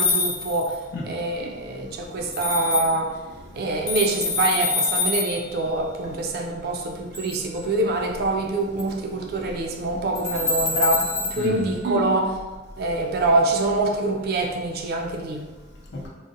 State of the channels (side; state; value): both; normal; correlation -0.10